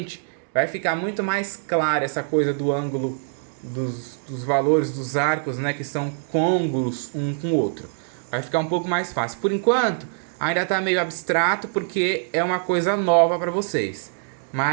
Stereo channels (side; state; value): left; silent; digital silence